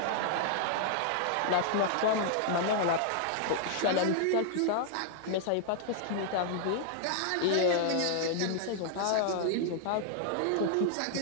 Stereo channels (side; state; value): both; different; correlation -0.01